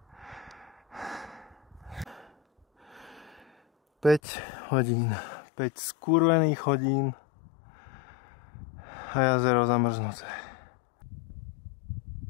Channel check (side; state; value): right; drops out; at 4.2 s